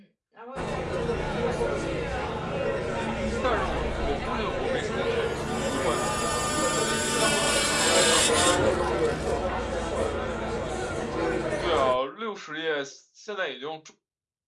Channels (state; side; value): identical; both; correlation 1.00